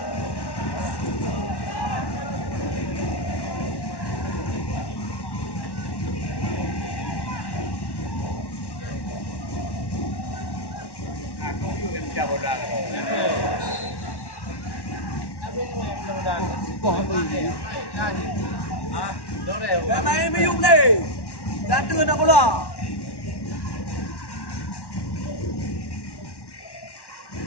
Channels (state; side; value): late; right; 1.1 ms